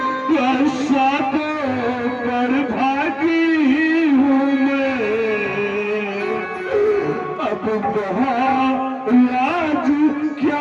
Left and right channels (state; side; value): identical; both; correlation 1.00